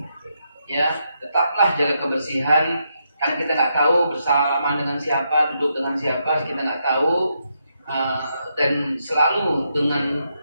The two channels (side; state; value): both; inverted; correlation -0.80